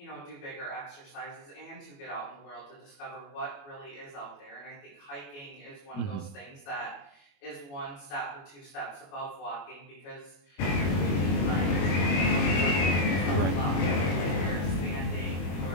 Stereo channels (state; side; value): late; right; 21 ms